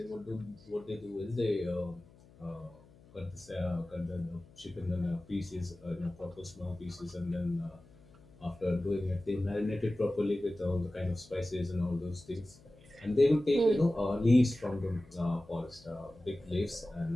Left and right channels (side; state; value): left; noise; hum, 25 dB below the sound